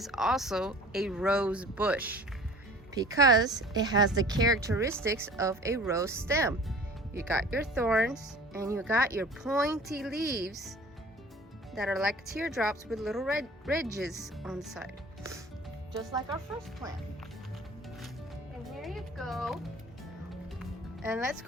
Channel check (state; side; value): normal; both; correlation 0.45